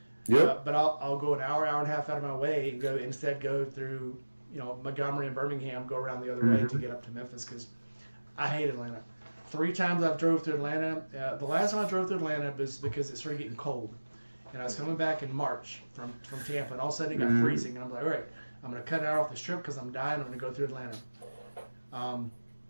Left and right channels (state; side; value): inverted; both; correlation -1.00